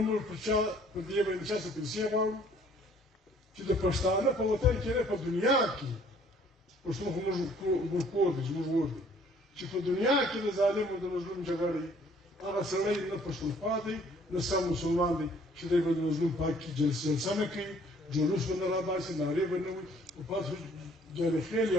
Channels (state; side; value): normal; both; correlation 0.59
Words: الشهر بدي بين شهر سبدي كده كشتانه فوتان كده في الدنيا كي وش مو كودج مو چې په دنیا کې د ظالم او د مظلوم جګړې هغه سړی نه پښتون پاتې نه سم مسلمان دی چې دی به د مظلوم پاک کې جلسه نه کوي جلوس به نه راباسي نارې به نه وي او پاس جارخیل